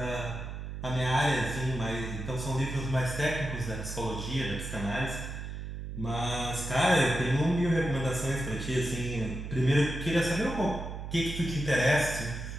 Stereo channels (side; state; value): right; noise; hum, 7 dB below the sound